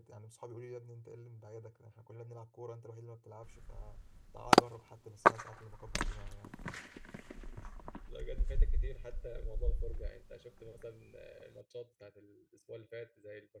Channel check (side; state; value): both; identical; correlation 1.00